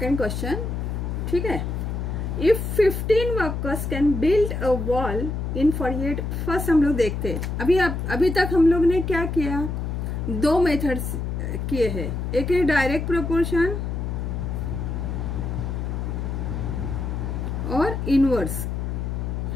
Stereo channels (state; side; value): noise; left; hum, 3 dB below the sound